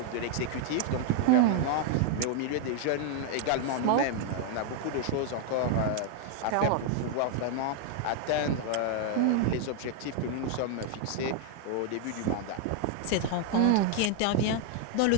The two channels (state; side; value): different; both; correlation 0.00